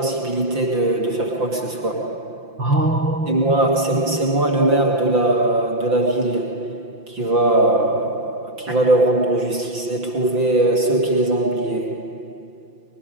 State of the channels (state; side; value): late; left; 5.8 ms